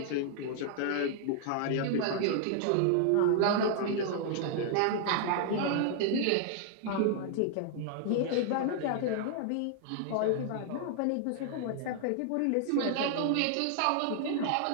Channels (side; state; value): both; different; correlation -0.01